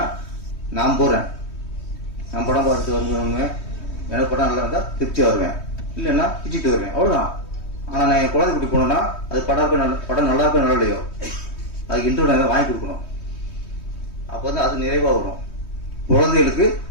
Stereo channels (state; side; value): late; right; 3.2 ms